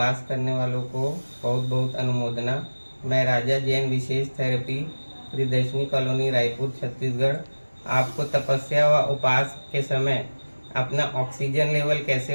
करने वालों को बहुत बहुत अनुमोदना। मैं राजा जैन विशेष थेरेपी प्रियदर्शनी कॉलोनी रायपुर छत्तीसगढ़ आपको तपस्या व उपास के समय अपना ऑक्सीजन लेवल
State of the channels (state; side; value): inverted; both; correlation -1.00